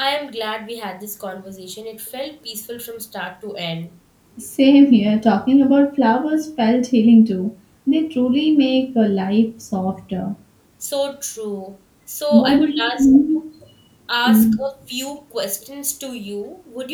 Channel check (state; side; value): identical; both; correlation 1.00